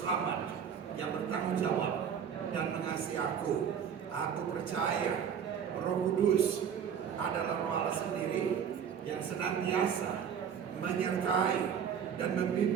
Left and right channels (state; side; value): quieter; left; 7.9 dB